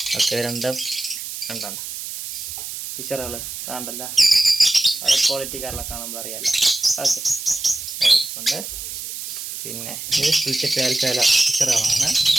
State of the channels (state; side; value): noise; right; hiss, 8 dB below the sound